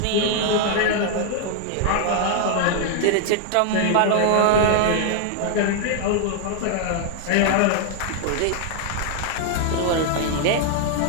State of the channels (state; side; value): different; both; correlation 0.00